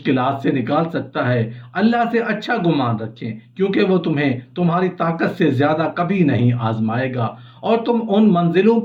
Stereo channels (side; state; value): both; identical; correlation 1.00